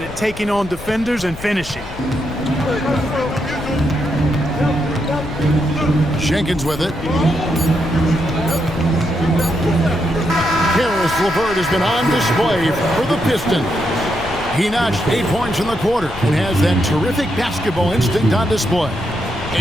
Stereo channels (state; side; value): noise; left; rumble, 14 dB below the sound